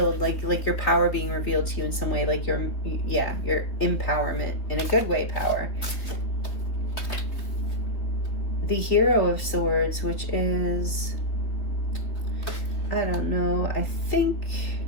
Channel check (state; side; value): late; right; 3.3 ms